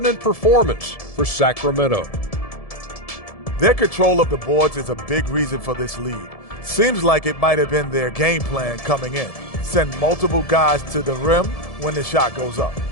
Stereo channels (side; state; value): right; late; 1.7 ms